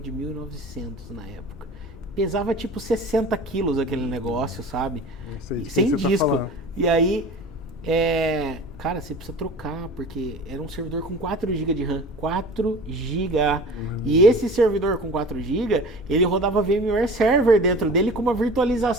1900 na época. Pesava tipo 60 quilos aquele negócio, sabe? Sem disco. E aí, cara, você precisa trocar, porque era um servidor com 4 GB de RAM. 4 GB. E esse servidor com 4 GB, ele rodava VMware Server dentro dele com uma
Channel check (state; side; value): normal; both; correlation 0.39